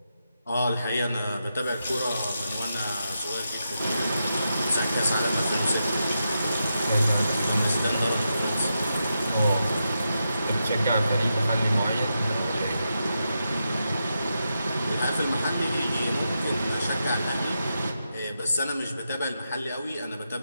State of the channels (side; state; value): both; inverted; correlation -0.86